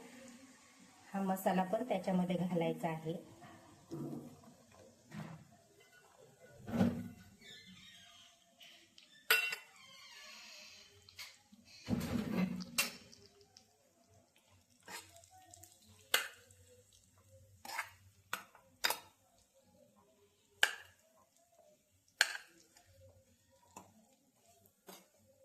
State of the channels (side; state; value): both; identical; correlation 1.00